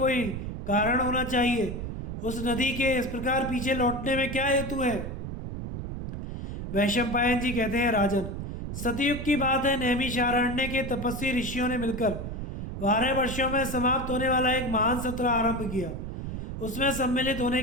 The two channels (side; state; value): right; noise; rumble, 6 dB below the sound